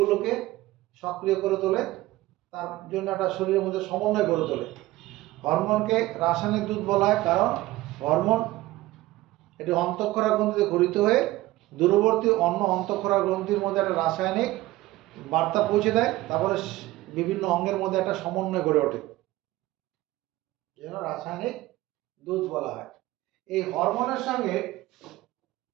সক্রিয় করে তোলে, তার জন্য একটা শরীরের মধ্যে সমন্বয় গড়ে তোলে। হরমোনকে রাসায়নিক দুধ বলা হয়, কারণ হরমোন এটি অন্তঃক্ষরা গ্রন্থিতে গঠিত হয়ে দূরবর্তী অন্য অন্তঃক্ষরা গ্রন্থির মধ্যে একটা রাসায়নিক বার্তা পৌঁছে দেয়, তারপরে বিভিন্ন অঙ্গের মধ্যে একটা সমন্বয় গড়ে ওঠে, যেন রাসায়নিক দুধ বলা হয়। এই হরমোনের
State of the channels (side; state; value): left; quieter; 17.6 dB